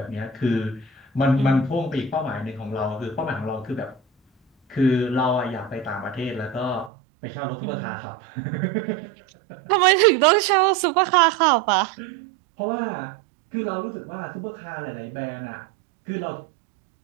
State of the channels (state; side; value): drops out; left; at 6.9 s